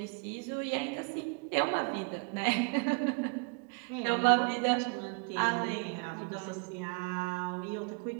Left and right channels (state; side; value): quieter; left; 35.3 dB